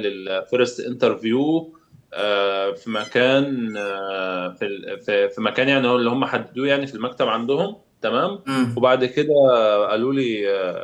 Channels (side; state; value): both; identical; correlation 1.00